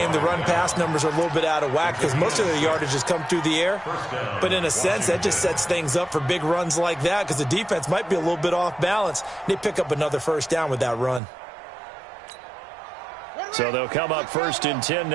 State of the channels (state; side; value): drops out; left; at 11.2 s